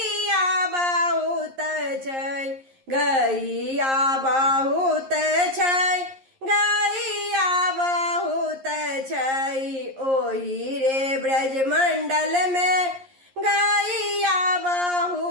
बहुत छई। गैया बहुत छई, गैया बहुत छई। ओही रे ब्रज मंडल में गैया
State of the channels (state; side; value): late; left; 11 ms